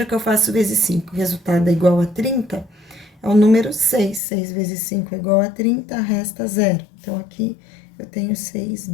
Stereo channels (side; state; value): right; drops out; at 4.2 s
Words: que eu faço vezes 5, resultado é igual a 30, é o número 6. 6 vezes 5 é igual a 30, resta 0. Então, aqui eu tenho 6